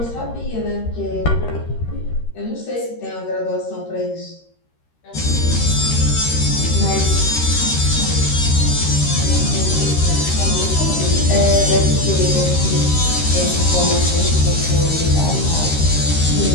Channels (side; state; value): right; late; 13 ms